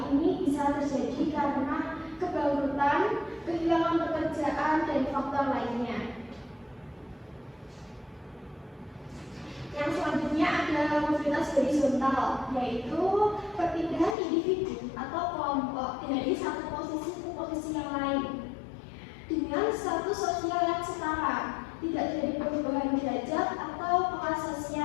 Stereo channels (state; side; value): drops out; right; at 14.2 s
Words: Ini bisa terjadi karena kebangkrutan, kehilangan pekerjaan, dan faktor lainnya. Yang selanjutnya ada mobilitas horizontal, yaitu perpindahan individu atau kelompok dari satu posisi ke posisi yang lain dengan status sosial yang setara, tidak terjadi perubahan derajat atau kelas